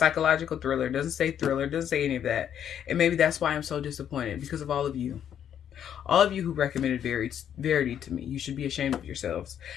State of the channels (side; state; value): right; quieter; 9.4 dB